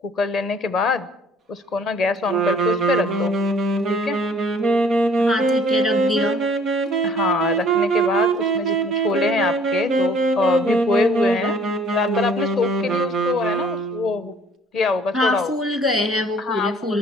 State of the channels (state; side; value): normal; both; correlation 0.56